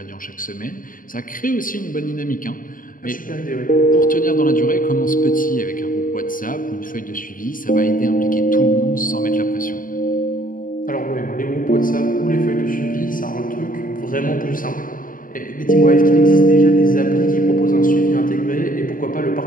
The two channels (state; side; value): late; right; 0.40 ms